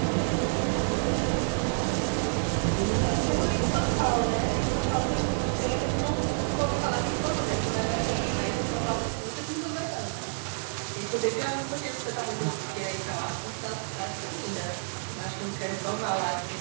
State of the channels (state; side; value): silent; left; digital silence